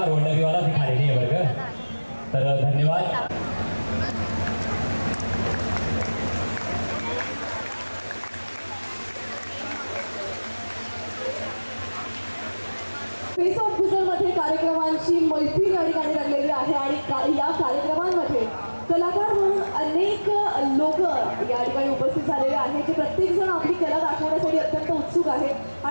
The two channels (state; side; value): inverted; both; correlation -1.00